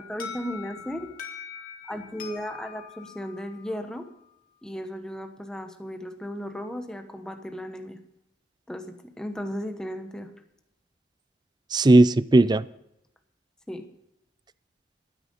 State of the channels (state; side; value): normal; both; correlation 0.88